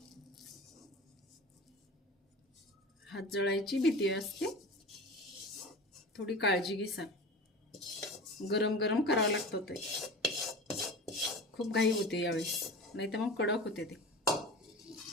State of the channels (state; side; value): normal; both; correlation 0.34